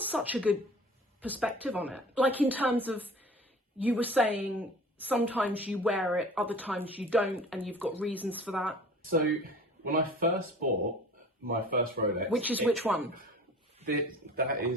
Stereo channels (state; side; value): normal; both; correlation 0.44